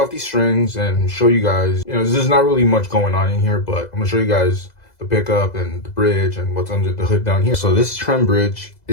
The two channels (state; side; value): late; right; 2.0 ms